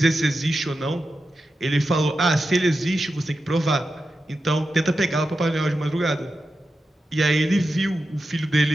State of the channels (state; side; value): normal; both; correlation 0.91